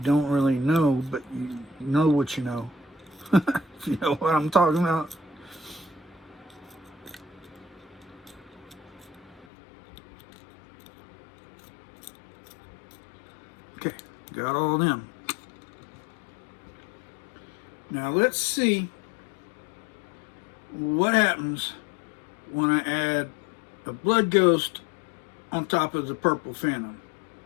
don't really know, but you know what you know. If you know what I'm talking about. Okay, got all of them. Now let's see what happens when I add a Blood Ghost on top of the Purple Phantom.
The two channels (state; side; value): drops out; right; at 9.5 s